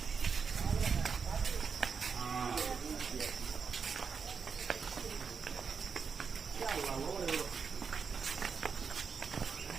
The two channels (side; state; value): left; quieter; 5.9 dB